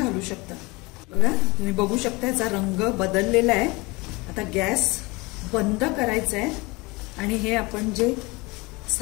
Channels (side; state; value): right; quieter; 24.6 dB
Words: शकता. बघा, तुम्ही बघू शकता याचा रंग बदललेला आहे. आता गॅस बंद करायचा आहे आणि हे आपण जे